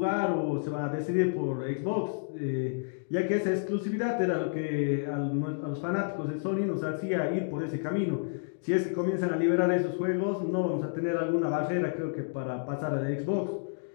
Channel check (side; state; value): right; silent; digital silence